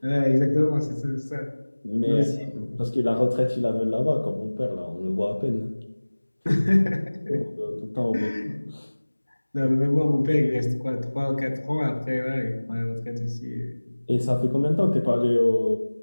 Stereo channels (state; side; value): inverted; both; correlation -1.00